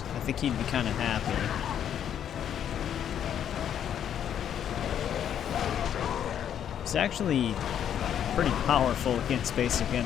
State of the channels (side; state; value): right; quieter; 9.5 dB